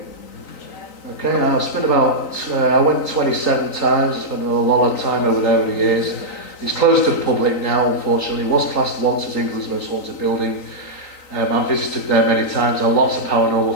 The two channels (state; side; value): late; right; 3.9 ms